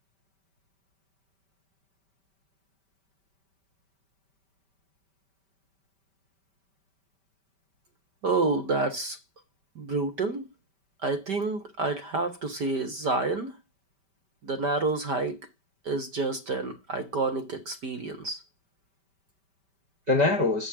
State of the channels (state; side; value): late; left; 5.1 ms